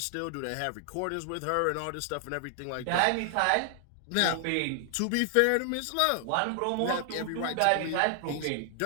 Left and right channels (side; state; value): both; different; correlation 0.00